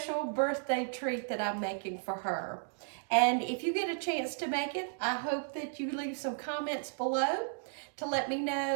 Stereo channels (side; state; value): left; silent; digital silence